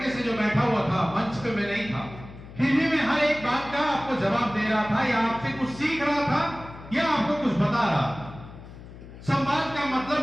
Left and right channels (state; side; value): noise; left; hum, 16 dB below the sound